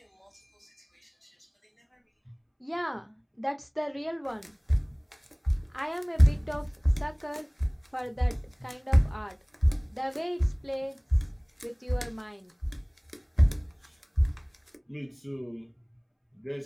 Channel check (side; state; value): both; identical; correlation 1.00